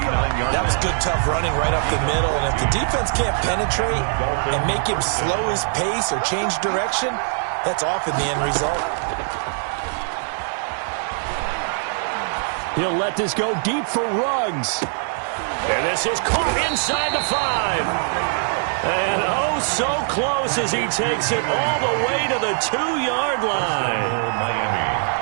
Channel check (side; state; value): left; silent; digital silence